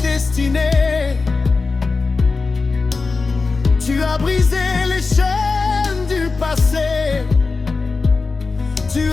Tu as brisé les chaînes du passé. Tu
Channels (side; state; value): right; quieter; 4.1 dB